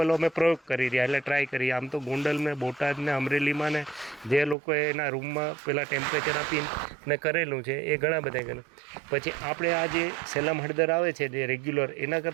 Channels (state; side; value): drops out; left; at 4.5 s